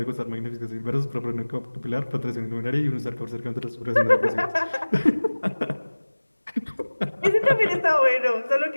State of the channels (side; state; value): both; inverted; correlation -1.00